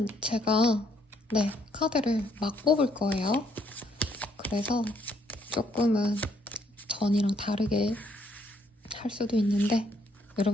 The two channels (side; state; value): both; normal; correlation 0.70